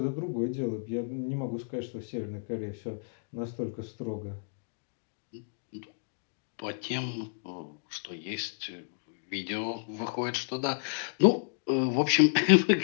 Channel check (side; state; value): right; silent; digital silence